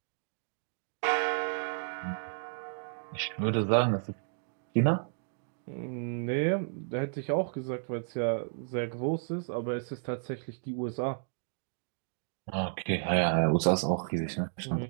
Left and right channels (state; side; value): silent; left; digital silence